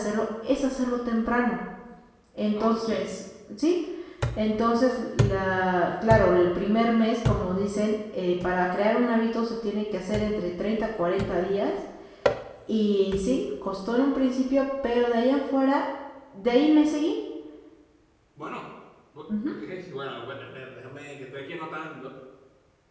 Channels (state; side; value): identical; both; correlation 1.00